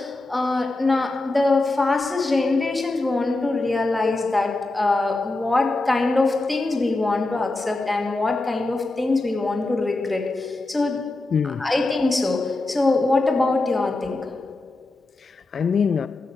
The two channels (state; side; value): quieter; right; 3.0 dB